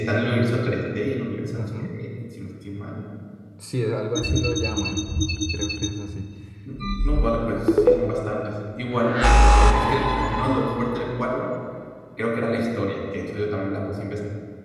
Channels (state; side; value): identical; both; correlation 1.00